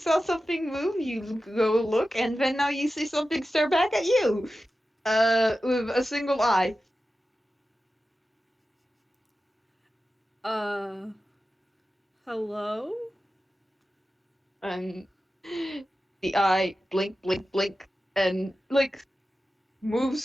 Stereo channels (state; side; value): normal; both; correlation 0.93